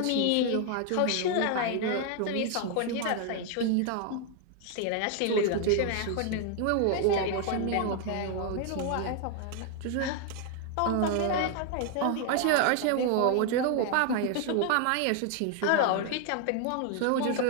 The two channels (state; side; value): different; both; correlation 0.00